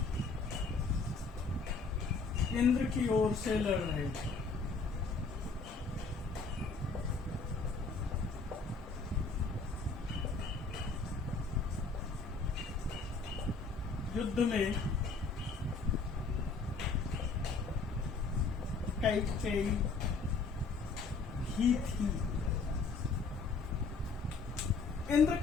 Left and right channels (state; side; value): quieter; right; 4.3 dB